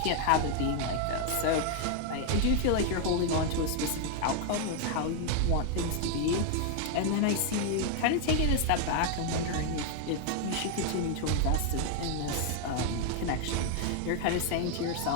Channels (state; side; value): different; both; correlation 0.00